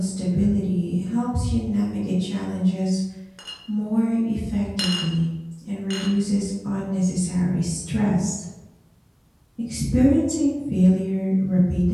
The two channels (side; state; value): both; identical; correlation 1.00